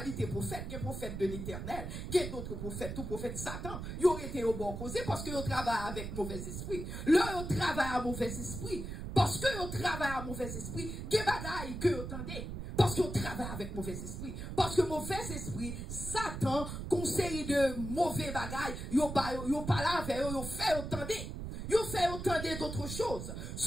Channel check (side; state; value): right; noise; rumble, 6 dB below the sound